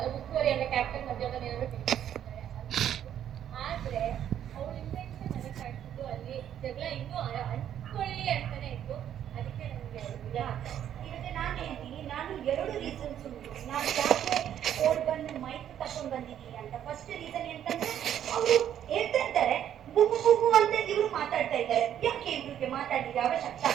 ಉಸ್ತುವಾರಿ ಅಂದ್ರೆ ಕ್ಯಾಪ್ಟನ್ ಮಧ್ಯಾಹ್ನ ಏನಾದ್ರು ಆದ್ರೆ ಅವ್ಳ ಇಂಟೆನ್ಷನ್ ನನಗೆ ಕಾಣಿಸಿದ್ದು ಅಲ್ಲಿ ಜಗಳ ಇನ್ನೂ ಅಂಟ್ಕೊಳ್ಳಿ ಅಂತಾನೆ ಇತ್ತು. ಅದಕ್ಕೆ ನನಗೆ ಈಗ ನಾನು ಹೇಳ್ತೀನಿ, ನಾನು 2 ರೀಸನ್ಸ್ ಉಂಟು ನಾನು ಯಾಕೆ ಓಡ್ ಬಂದು ಮೈಕ್ ತಗೊಂಡು ಬಂದಿದ್ದೀನಿ ಅಂತ. ಫಸ್ಟ್ ರೀಸನ್ ಎಂತಂದ್ರೆ, ಅವರು ಹೇಳ್ತಾ ಇದ್ದಾರೆ ಬುಗು ಅಂತ ಇವರು ಮಾತಾಡ್ತಾ ಇದ್ದಾರೆ. ಯಾಕೆ ಇವ್ರಿಗೆ ಮಾತಾಡಿದ ಅವಶ್ಯಕತೆ?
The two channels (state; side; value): quieter; left; 10.2 dB